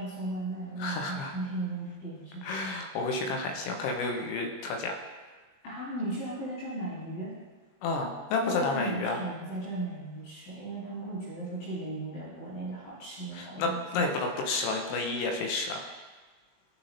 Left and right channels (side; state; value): right; late; 21 ms